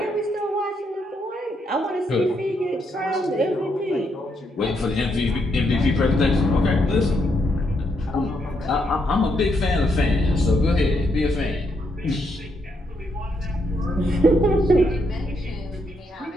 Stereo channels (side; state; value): both; normal; correlation 0.77